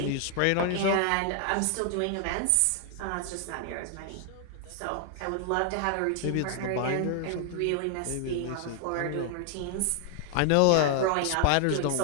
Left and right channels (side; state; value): both; different; correlation 0.00